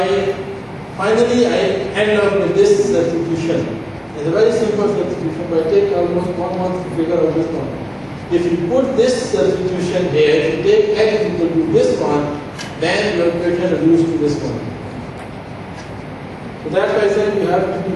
finally I end up with this substitution. It's a very simple substitution, but it takes almost 1 month to figure out this one. If you put this substitution here, if you take x equal to this one, then your equation reduced to this one. So that's why I said you have to be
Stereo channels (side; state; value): both; identical; correlation 1.00